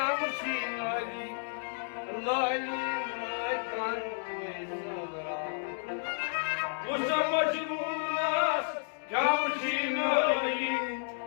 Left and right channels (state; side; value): silent; right; digital silence